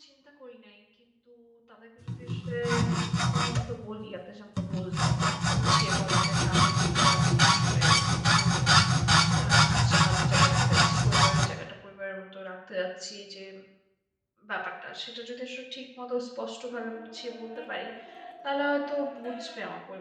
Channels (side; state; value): both; identical; correlation 1.00